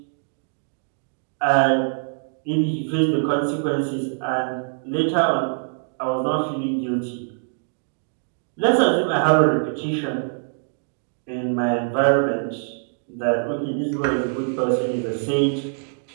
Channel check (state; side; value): silent; left; digital silence